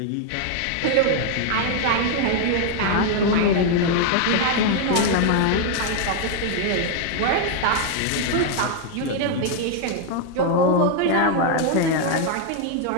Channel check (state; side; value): different; both; correlation 0.01